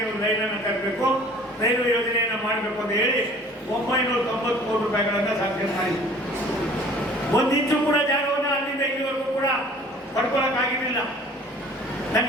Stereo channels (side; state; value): both; normal; correlation 0.50